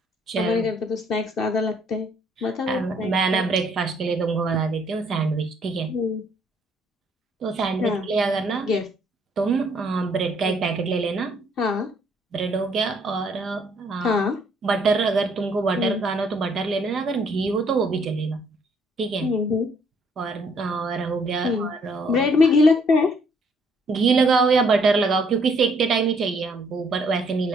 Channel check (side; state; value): both; normal; correlation 0.66